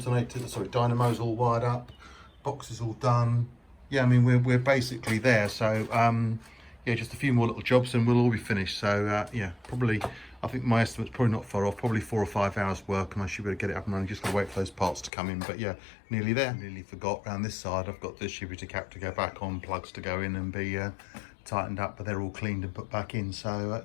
all wired up, box is all done. Yeah, I mean we're basically there, so yeah, just a few more little jobs and we'll all be finished. So yeah, probably, I think my estimate's probably not far off, probably 4 or 5 hours work, and I should be able to get it up and running. Just gotta wait for those parts to come in, but yeah, nearly there. Nearly forgot, around this side I've got the distributor cap to go back on, plugs to go in and be tightened up, but they're all cleaned and put back in. So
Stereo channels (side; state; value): right; drops out; at 15.1 s